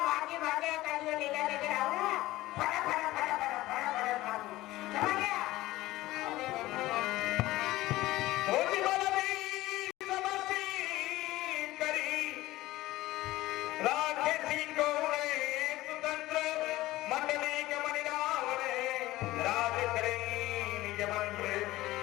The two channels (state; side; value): quieter; right; 17.4 dB